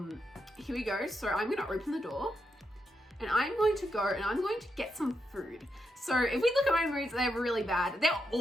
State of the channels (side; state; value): both; normal; correlation 0.83